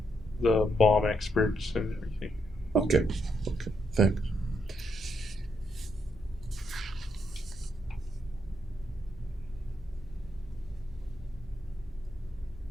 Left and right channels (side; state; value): both; normal; correlation 0.77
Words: the bomb experts and everything. Okay. Okay. Thanks.